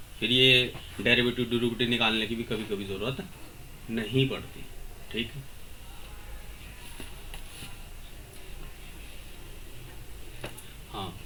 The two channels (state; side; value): identical; both; correlation 1.00